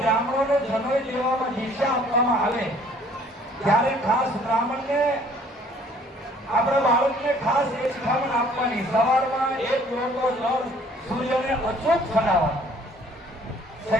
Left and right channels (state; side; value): normal; both; correlation 0.58